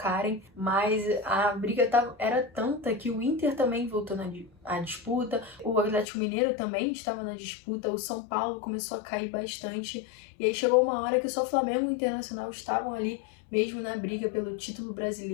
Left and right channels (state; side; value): drops out; right; at 6.1 s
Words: mas a briga era tanta que o Inter também voltou à disputa, o Atlético Mineiro também estava na disputa, o São Paulo começou a cair bastante e aí chegou uma hora que só o Flamengo e o Internacional estavam ali mesmo na briga pelo título